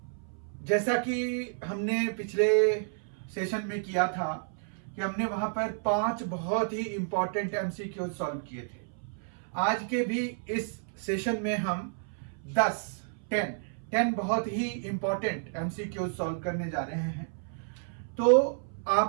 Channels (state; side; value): silent; left; 57 dB below the other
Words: जैसा कि हमने पिछले session में किया था कि हमने वहां पर 5 बहुत ही इंपॉर्टेंट एमसीक्यू सॉल्व किए थे। आज के भी इस सेशन में हम 10 बहुत ही इंपॉर्टेंट एमसीक्यू सॉल्व करने जा रहे हैं। तो